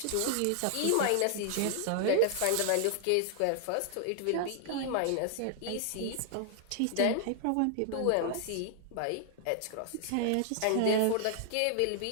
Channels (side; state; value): both; different; correlation -0.01